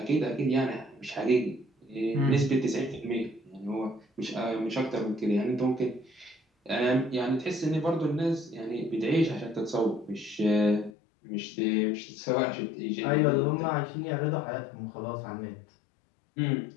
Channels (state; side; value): drops out; right; at 11.0 s